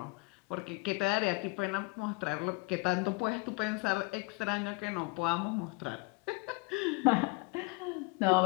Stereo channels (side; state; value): right; quieter; 28.0 dB